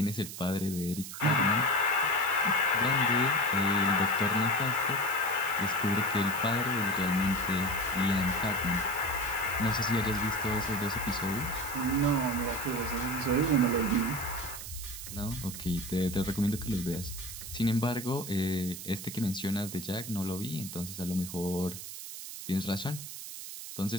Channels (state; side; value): noise; right; hiss, 10 dB below the sound